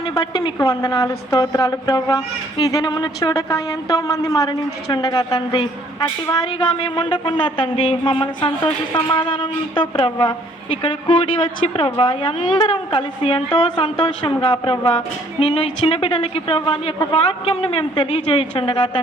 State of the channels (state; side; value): normal; both; correlation 0.61